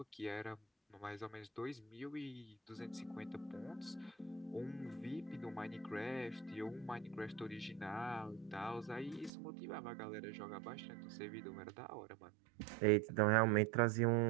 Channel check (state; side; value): drops out; left; at 9.3 s